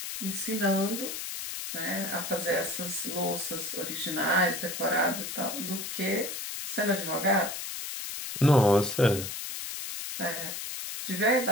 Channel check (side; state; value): left; noise; hiss, 6 dB below the sound